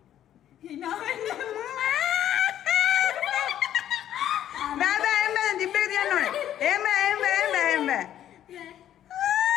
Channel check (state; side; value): quieter; right; 11.2 dB